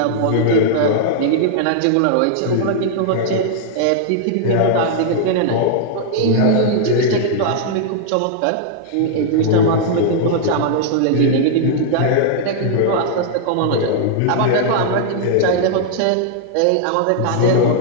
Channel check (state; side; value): different; both; correlation -0.01